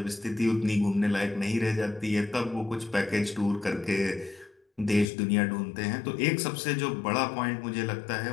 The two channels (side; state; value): right; drops out; at 5.1 s